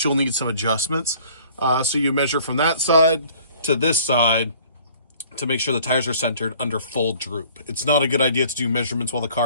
you'll need some adjustments. So you measure from that side to this side to make sure the tires are centered under full droop. It's not a good idea to do measurements while the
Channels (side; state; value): both; inverted; correlation -0.53